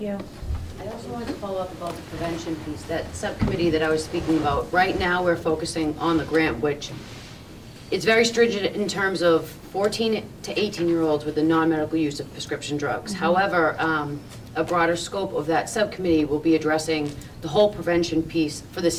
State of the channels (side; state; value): both; identical; correlation 1.00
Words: I also wanted to follow up about the prevention piece, that subcommittee that I was speaking about. Right now, we're focusing on the grant, which it's very stringent in terms of 14 to 18-year-olds with the non-medical use of prescription drugs. However, a broader scope of that subcommittee will be addressing the whole prevention piece for the